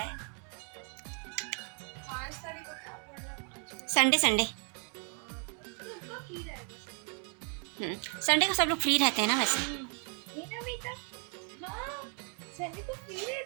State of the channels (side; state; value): left; quieter; 38.9 dB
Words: 5 तारीख को क्या बोल रहा है? संडे संडे संडे को सब लोग फ्री रहते हैं ना वैसे। संडे को फ्री